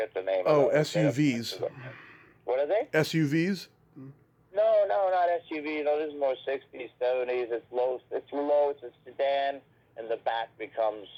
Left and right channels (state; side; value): identical; both; correlation 1.00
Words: the name of them. SUVs. What are they? SUVs? No, not SUVs. No, this is more 60s, 70s. It's low. It's a sedan, and the back becomes